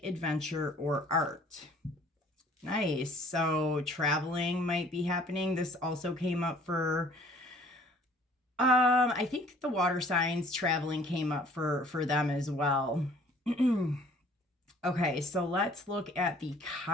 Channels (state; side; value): normal; both; correlation 0.55